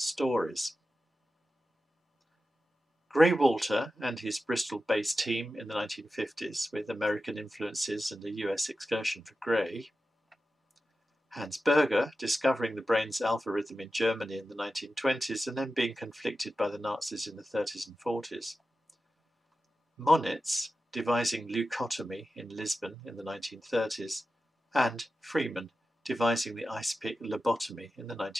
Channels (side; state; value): both; normal; correlation 0.93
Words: Grey Walter and his Bristol-based team in the 1950s with American influences and a US excursion for Grey. Hans Berger discovering the brain's alpha rhythm in Germany in the 1920s and then being conflicted by the Nazis in the 30s and 40s. Moniz devising leucotomy in Lisbon in the 1930s, and Freeman devising the ice-pick lobotomy in the